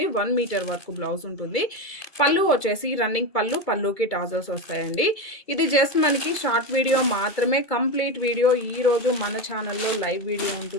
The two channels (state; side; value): late; right; 2.3 ms